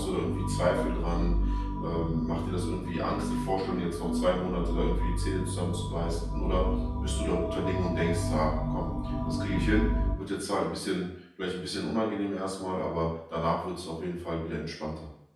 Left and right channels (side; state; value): both; identical; correlation 1.00